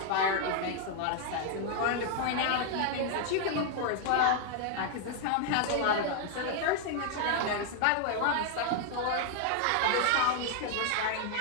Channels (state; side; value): different; both; correlation 0.00